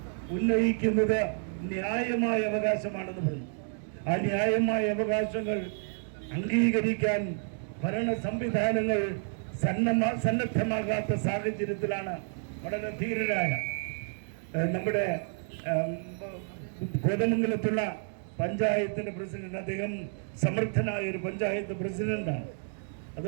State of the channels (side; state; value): left; silent; 58 dB below the other